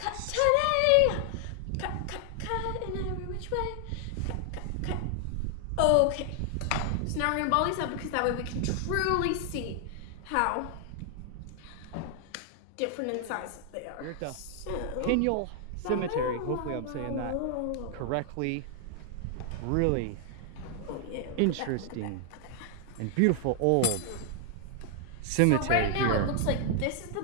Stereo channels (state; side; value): different; both; correlation 0.00